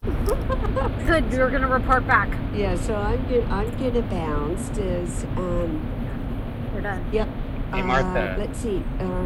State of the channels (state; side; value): identical; both; correlation 1.00